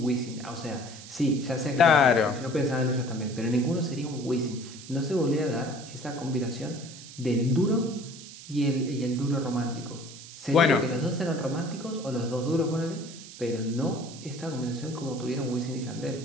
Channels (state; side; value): noise; right; hiss, 15 dB below the sound